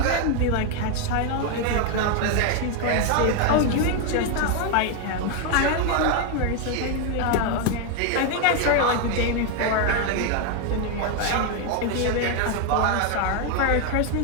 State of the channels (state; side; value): different; both; correlation 0.01